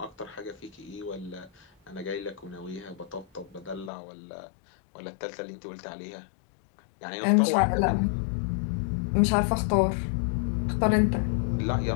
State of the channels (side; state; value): right; drops out; at 3.9 s